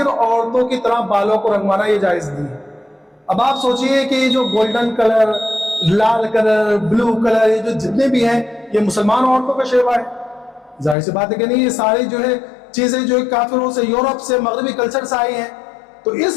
عورتوں کی طرح بالوں کو رنگوانا یہ جائز نہیں ہے. اب آپ سوچئے کہ یہ جو گولڈن کلر, لال کلر, بلو کلر, یہ جو جتنے بھی ہیں یہ مسلمان عورتوں کا شیوا ہے. ظاہر سی بات ہے کہ نہیں, یہ ساری جو ہے چیزیں جو کافروں سے, یورپ سے, مغربی کلچر سے آئی ہیں, تو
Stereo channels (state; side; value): drops out; right; at 11.0 s